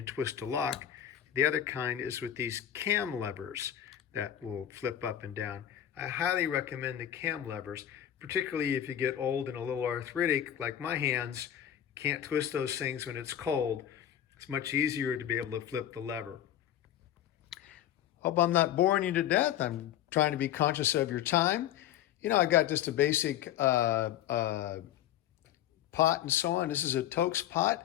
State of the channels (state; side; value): quieter; right; 11.1 dB